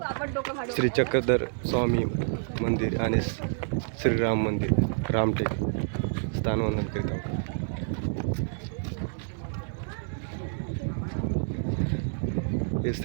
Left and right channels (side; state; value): left; silent; digital silence